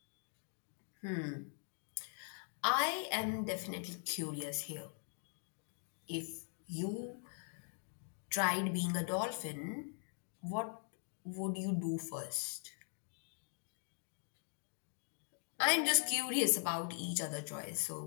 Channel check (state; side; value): silent; right; 50 dB below the other